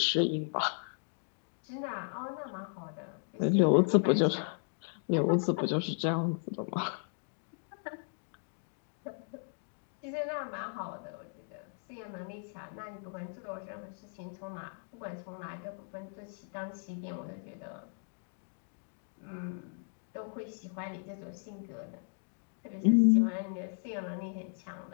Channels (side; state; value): right; silent; 54 dB below the other